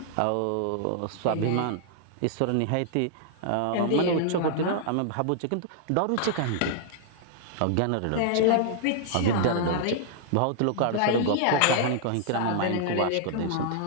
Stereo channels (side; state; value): both; different; correlation -0.01